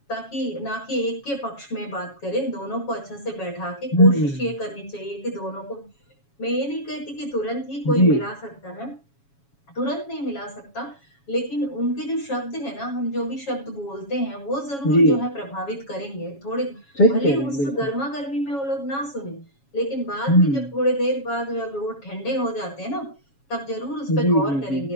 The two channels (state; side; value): late; right; 7.2 ms